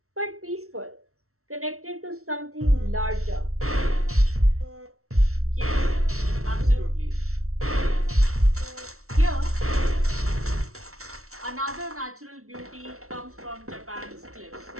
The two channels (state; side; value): late; left; 0.63 ms